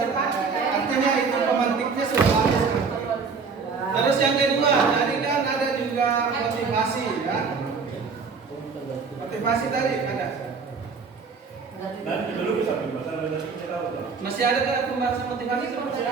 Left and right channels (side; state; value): left; quieter; 5.1 dB